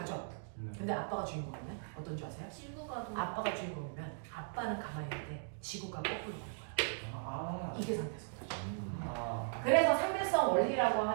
근데 아빠가 주인공이면 어떤 줄 아세요? 지구가 좀 아빠가 주인공이면 아빠는 가만히 있는데 지구가 거꾸로 가는 거야. 아. 이게 상대성이죠. 아. 그래서 상대성 원리라고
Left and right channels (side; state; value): left; silent; digital silence